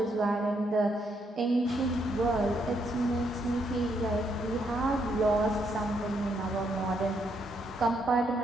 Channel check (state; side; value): normal; both; correlation 0.75